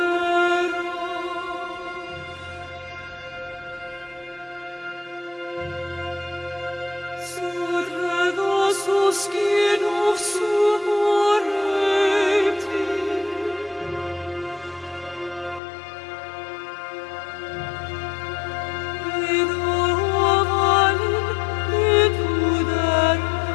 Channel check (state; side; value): drops out; right; at 15.6 s